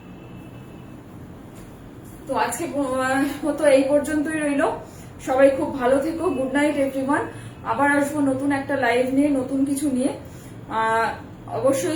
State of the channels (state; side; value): identical; both; correlation 1.00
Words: তো আজকে মতো এই পর্যন্তই রইল। সবাই খুব ভালো থেকো, গুড নাইট এভরিওয়ান। আবার আসবো নতুন একটা লাইভ নিয়ে, নতুন কিছু নিয়ে।